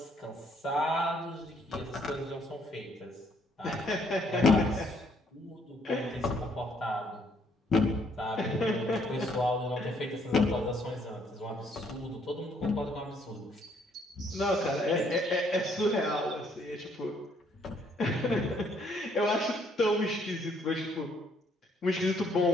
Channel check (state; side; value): normal; both; correlation 0.67